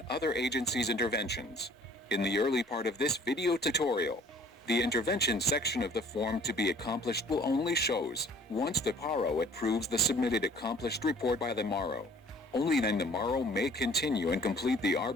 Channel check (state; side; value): normal; both; correlation 0.53